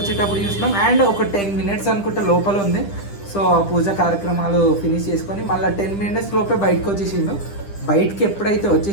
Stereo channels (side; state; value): right; late; 10 ms